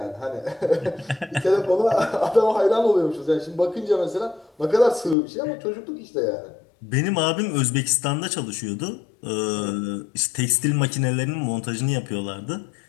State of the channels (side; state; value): right; drops out; at 5.2 s